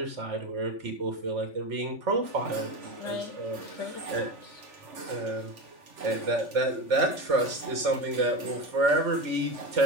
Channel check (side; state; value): left; late; 3.4 ms